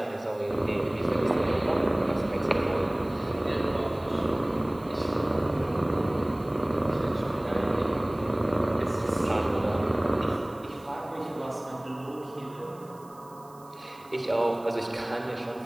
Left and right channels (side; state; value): right; noise; hiss, 27 dB below the sound